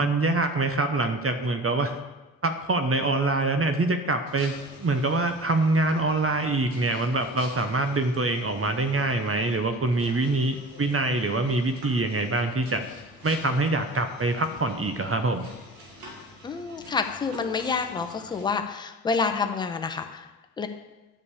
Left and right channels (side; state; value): both; normal; correlation 0.38